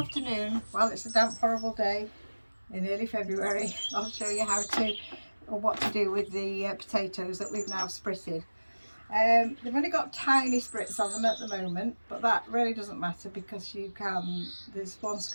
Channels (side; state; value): both; inverted; correlation -1.00